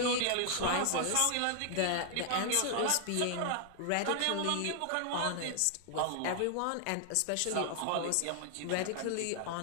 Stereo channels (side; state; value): both; different; correlation 0.00